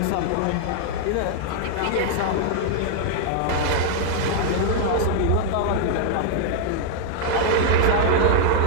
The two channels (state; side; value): different; both; correlation 0.00